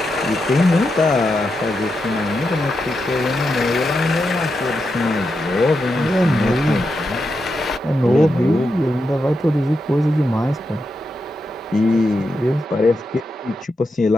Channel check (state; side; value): normal; both; correlation 0.86